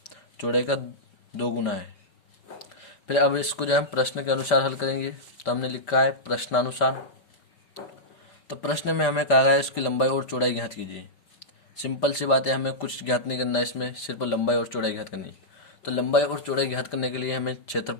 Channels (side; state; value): right; late; 5.3 ms